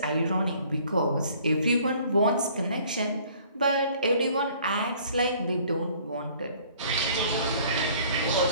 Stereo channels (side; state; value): both; inverted; correlation -0.56